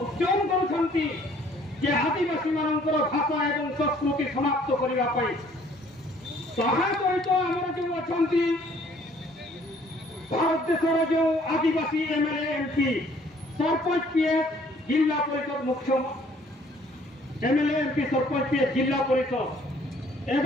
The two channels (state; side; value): normal; both; correlation 0.59